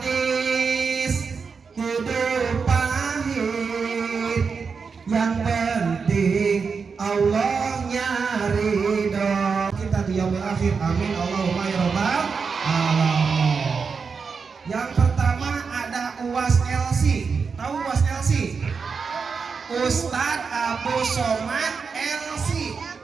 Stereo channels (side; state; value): left; quieter; 5.4 dB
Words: hidup pahit, yang penting Allahnya ridho. Kita di yaumil akhir, amin Allahumma ya rabbal alamin. Yang pertama ada UAS LC. Tahu UAS LC? Ustadz Abu Somad LC,